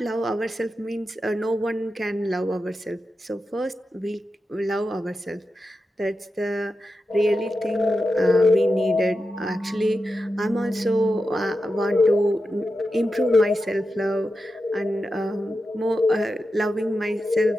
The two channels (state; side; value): normal; both; correlation 0.90